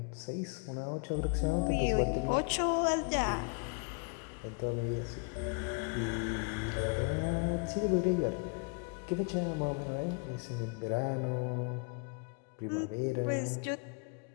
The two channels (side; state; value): right; quieter; 35.2 dB